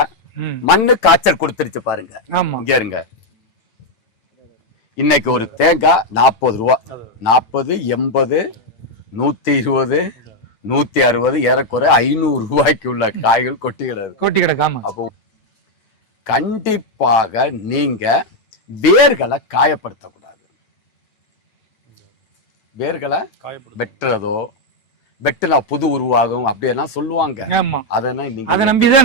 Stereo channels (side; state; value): right; late; 9.0 ms